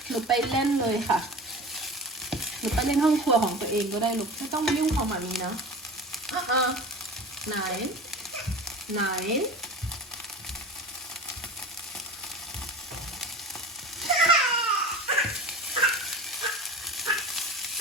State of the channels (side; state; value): both; normal; correlation 0.35